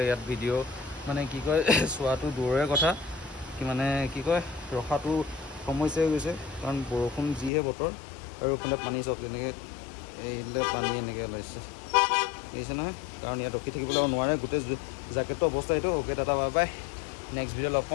ইয়াত ভিডিঅ' মানে কি কয় চোৱাটো দূৰৰে কথা কি মানে কি কয় ৰখাটো সমস্যা হৈ গৈছে কাৰণ বৰষুণ যিহে বতৰ আৰু এইফালে পানী চাওক তেনেকৈ এইফালে পানী এনেকৈ ওলাইছে দেখিছে নহয় কাৰণ ইয়াত ৰখি থাকিবলৈ নোৱাৰে গোটেই জেকেটটো অৱস্থা এইটো অ'কে দাদা বাই বাই নেক্সট ভিডিঅ' লগ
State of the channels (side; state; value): right; drops out; at 7.5 s